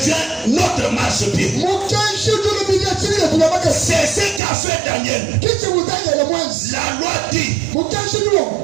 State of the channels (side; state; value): left; drops out; at 4.4 s